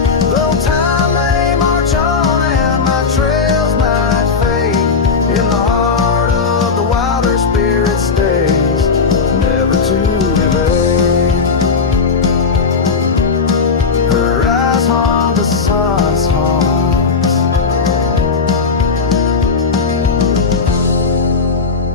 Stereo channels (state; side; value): quieter; right; 5.1 dB